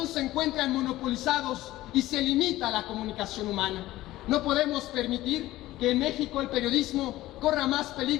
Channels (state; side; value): quieter; right; 16.3 dB